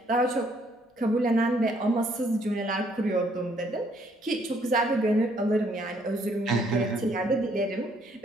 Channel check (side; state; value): both; normal; correlation 0.67